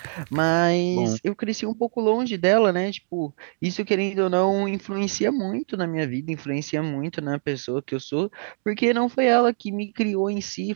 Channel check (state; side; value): silent; left; digital silence